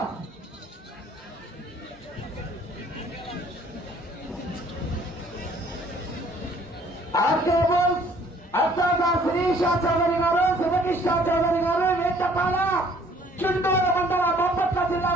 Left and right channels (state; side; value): normal; both; correlation 0.58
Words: ఆర్కేబుల్స్ అత్యంత శిరీష చౌదరి గారు, శివకృష్ణ చౌదరి గారు వేటపాల చుండూరు మండల బాపట్ల జిల్లా